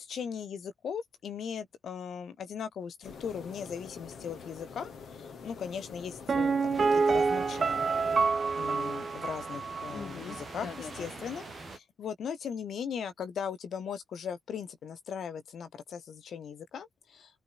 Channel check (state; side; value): normal; both; correlation 0.83